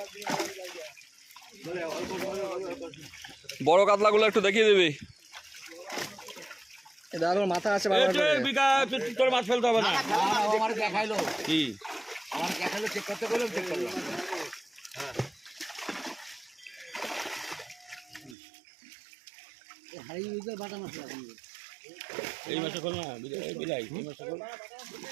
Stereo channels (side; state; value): left; drops out; at 18.4 s